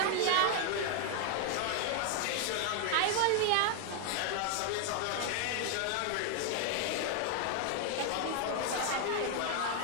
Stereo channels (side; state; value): both; different; correlation 0.00